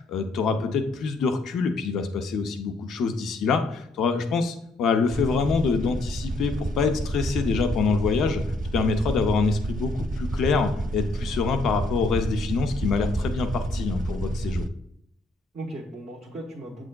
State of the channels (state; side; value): quieter; right; 3.1 dB